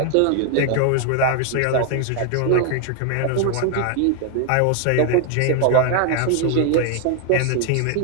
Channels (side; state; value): both; different; correlation 0.00